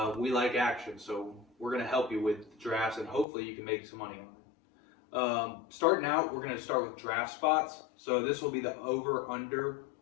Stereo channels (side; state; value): right; drops out; at 3.2 s